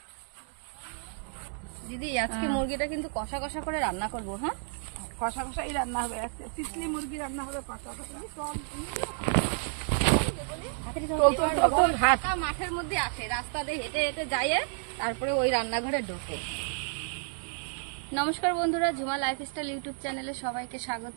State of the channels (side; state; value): left; silent; 56 dB below the other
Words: দিদি আজকে মুরগিটা কিন্তু কষা কষা করে রান্না করবো। হ্যাঁ, কষা কষাই রান্না হবে, তিতলি মুরগি রান্না হবে কষা কষা। মাঠের মধ্যে আসে, রাস্তা দিয়ে হেঁটে হেঁটে যায়, তারপরে ওই রান্নাঘরে ঢোকে। নমস্কার বন্ধুরা, ঝুমা লাইফস্টাইল ইউটিউব চ্যানেলে সবাইকে